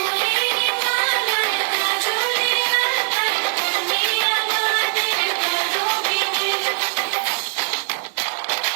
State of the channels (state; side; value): silent; left; digital silence